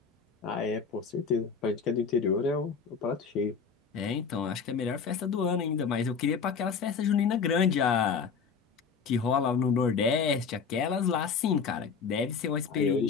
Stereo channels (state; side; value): quieter; right; 5.9 dB